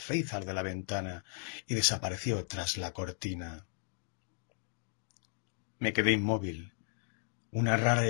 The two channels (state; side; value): silent; right; 54 dB below the other